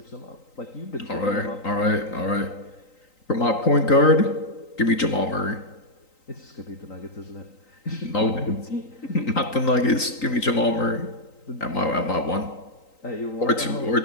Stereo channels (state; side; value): late; right; 3.9 ms